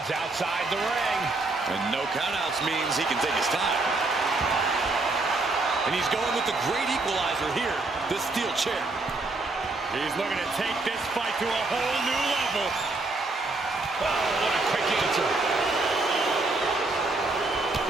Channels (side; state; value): left; quieter; 3.3 dB